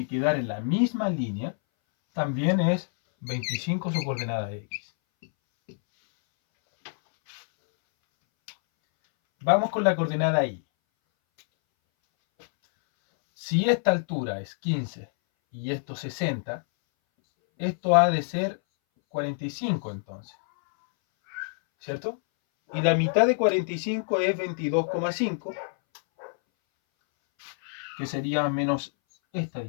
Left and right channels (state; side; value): silent; right; 60 dB below the other